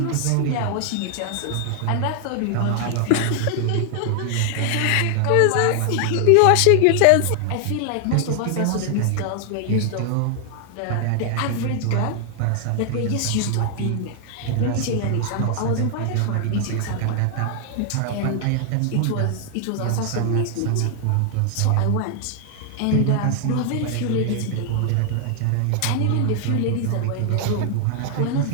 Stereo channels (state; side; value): different; both; correlation 0.00